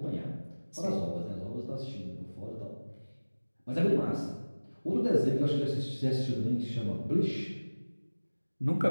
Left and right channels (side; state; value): both; inverted; correlation -1.00